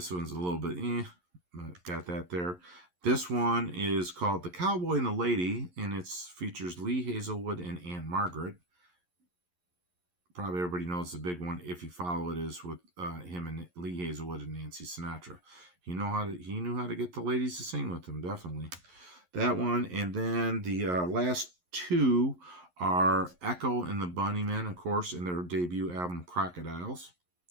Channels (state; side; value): late; left; 11 ms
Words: one's a little bit but got that there. This one is called The Cowboy and the Lady, and it features Lee Hazelwood and Anne Margaret. Probably everybody knows the big one, if you follow it, is with him and Lee Hazelwood and Nancy Sinatra. He knew how to get the ladies to sing with him, definitely. That one, and then the last two are Echo and the Bunnymen, of course, in their debut album Crocodiles.